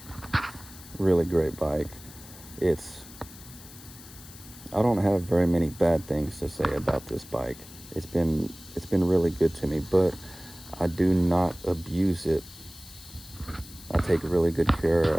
Really great bike. I don't have very many bad things to say about this bike. It's been really good to me, but I do not abuse it. I take really good care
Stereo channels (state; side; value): noise; left; hiss, 18 dB below the sound